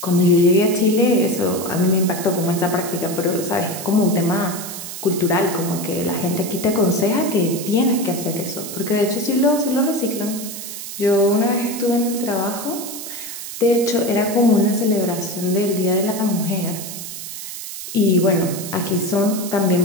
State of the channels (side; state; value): right; noise; hiss, 9 dB below the sound